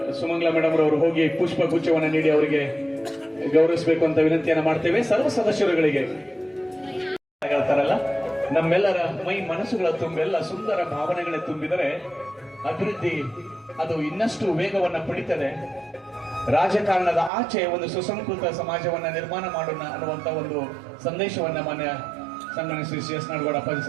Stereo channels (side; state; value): left; drops out; at 17.3 s